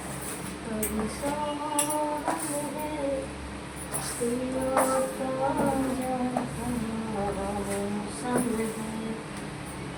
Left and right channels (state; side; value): identical; both; correlation 1.00